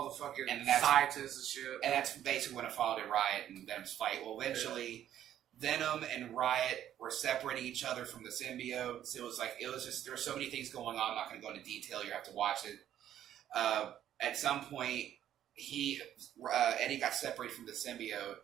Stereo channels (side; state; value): left; quieter; 11.1 dB